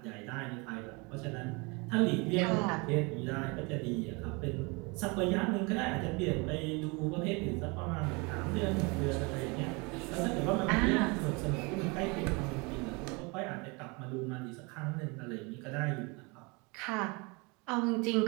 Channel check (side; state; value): left; quieter; 28.5 dB